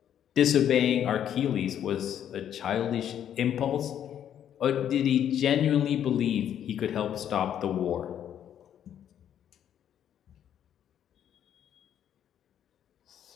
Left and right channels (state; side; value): quieter; right; 9.9 dB